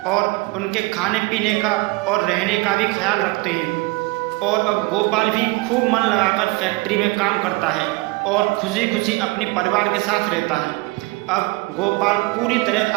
और उनके खाने पीने का और रहने का भी ख्याल रखते हैं। और अब गोपाल भी खूब मन लगाकर फैक्ट्री में काम करता है और खुशी खुशी अपने परिवार के साथ रहता है। अब गोपाल पूरी तरह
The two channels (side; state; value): left; quieter; 23.8 dB